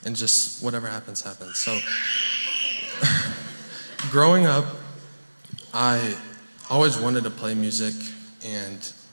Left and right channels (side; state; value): both; inverted; correlation -1.00